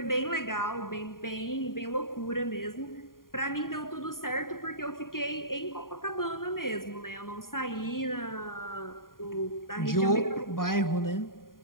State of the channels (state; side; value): late; right; 0.91 ms